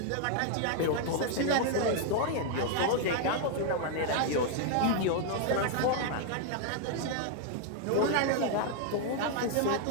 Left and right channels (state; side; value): different; both; correlation 0.00